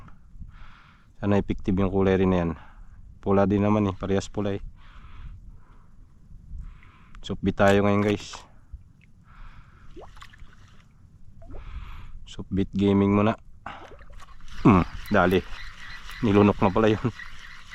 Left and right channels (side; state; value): both; identical; correlation 1.00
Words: Sana effective yung kulay rin na yan. Pula din naman eh, parehas pula eh. Supbit tayo ngayon guys. Supbit gaming muna. Dali. Nilunok na pala yun.